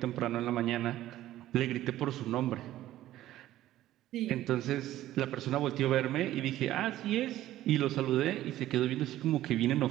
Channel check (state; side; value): quieter; left; 14.1 dB